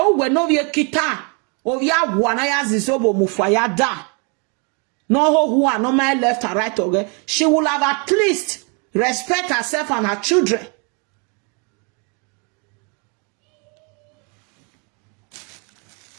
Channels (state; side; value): quieter; left; 35.0 dB